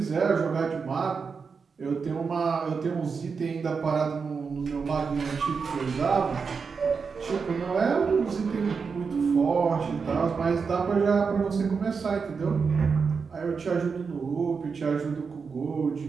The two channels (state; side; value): quieter; left; 5.4 dB